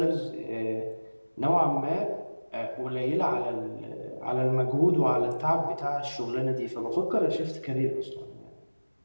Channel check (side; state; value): both; inverted; correlation -1.00